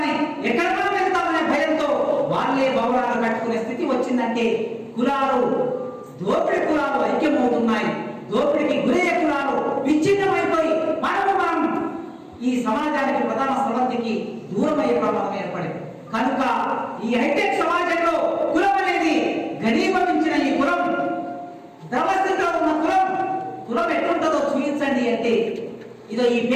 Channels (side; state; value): both; identical; correlation 1.00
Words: ఎక్కడ మనం వెళ్తామనే భయంతో వాళ్ళే భవనాలు కట్టుకునే స్థితి వచ్చిందంటే కులాలు, దోపిడి కులాలు ఐక్యమవుతున్నాయి. దోపిడికి గురయ్యే కులాలు విచ్ఛిన్నమైపోయి మనం ఈ సమాజానికి, ప్రధాన స్రవంతికి దూరం అయ్యే ప్రమాదం ఏర్పడింది. కనుక ఈ హైటెక్ సమాజంలో కులం అనేది ఘనీభవించిన ఈ కులం, ద్రవస్థితిలో ఉన్న కులం ఎట్లుంటుందో చూపించండి అంటే ఇదో ఈ